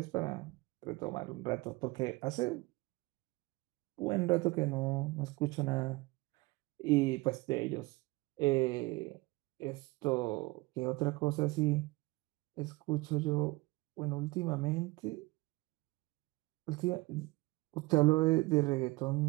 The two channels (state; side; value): quieter; left; 22.6 dB